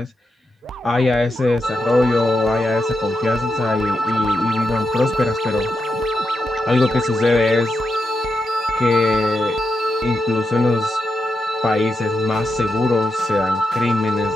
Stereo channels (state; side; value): normal; both; correlation 0.85